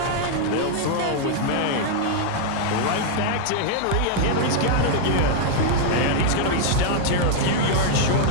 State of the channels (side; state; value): both; different; correlation -0.01